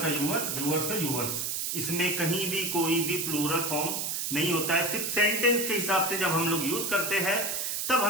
यूअर, यूअर्स का यूअर्स, इसमें कहीं भी कोई भी प्लूरल फॉर्म नहीं होता है। सिर्फ सेंटेंस के हिसाब से जब हम लोग यूज करते हैं तब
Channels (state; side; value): noise; right; hiss, 1 dB below the sound